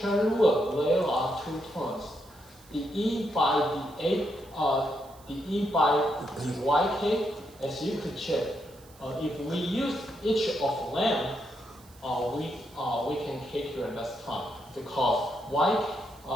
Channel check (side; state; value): right; noise; hiss, 25 dB below the sound